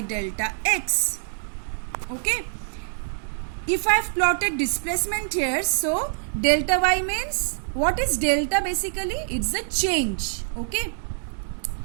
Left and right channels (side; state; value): left; silent; digital silence